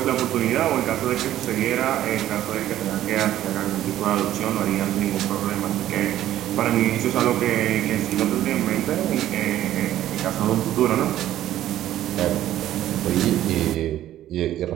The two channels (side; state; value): left; quieter; 12.9 dB